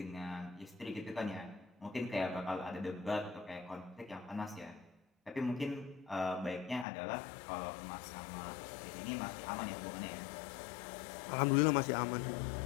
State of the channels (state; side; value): drops out; right; at 6.9 s